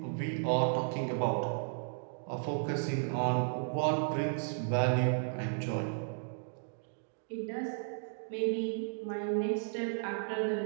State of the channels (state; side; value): silent; left; digital silence